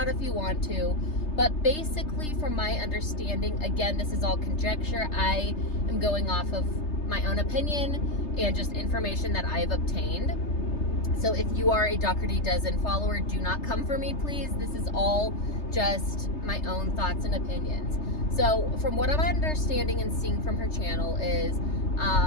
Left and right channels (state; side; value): late; right; 3.3 ms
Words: if you want to. But basically, from my understanding, again, this is all conjecture. I am going off of my own opinion and just information that I have obtained. So if you are a Dougherty dozen follower, do not come for me, please. This is all just my own thoughts and opinions. So from what I'm understanding and seeing from her channel is